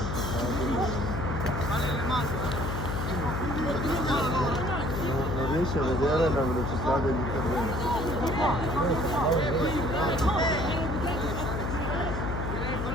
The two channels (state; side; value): noise; left; hum, 2 dB below the sound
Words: Non riesci a vedere la velocità degli interventi.